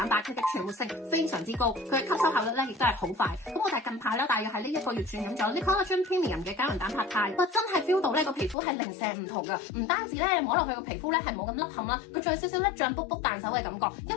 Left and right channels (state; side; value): drops out; right; at 8.6 s